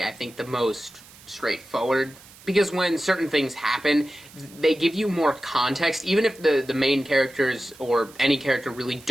I think, the most straightforward. Because when certain things happen, they give you more context. Even if the main characters or any character really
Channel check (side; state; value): right; noise; hiss, 22 dB below the sound